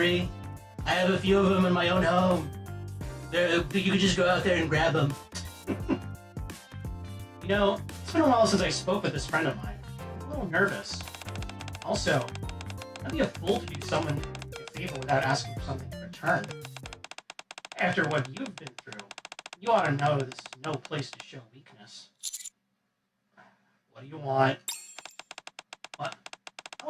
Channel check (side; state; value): both; identical; correlation 1.00